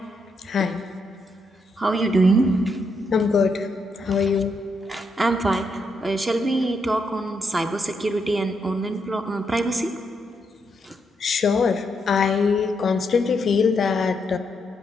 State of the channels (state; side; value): normal; both; correlation 0.79